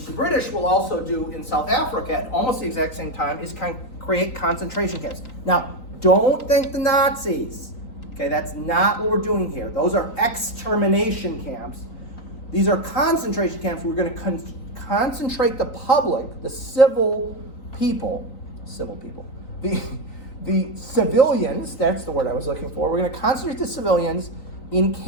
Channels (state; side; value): late; right; 3.9 ms